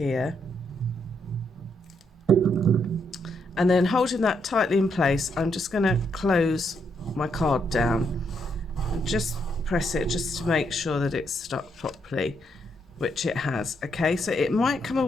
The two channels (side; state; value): both; normal; correlation 0.76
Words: and then holding that tightly in place, I'm just going to close my card down and just press it just to make sure that it's stuck properly, which it has. Okay, so it might come